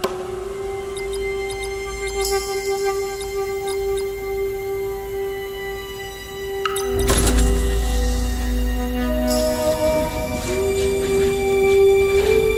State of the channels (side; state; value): both; identical; correlation 1.00